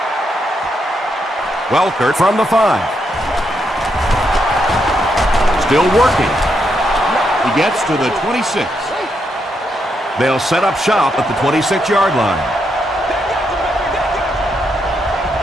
Welker from the 5. Still working. He gets to the 26. They'll set up shop at the 26-yard line.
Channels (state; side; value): normal; both; correlation 0.80